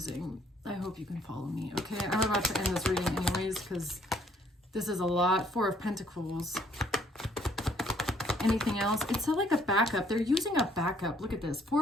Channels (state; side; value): normal; both; correlation 0.64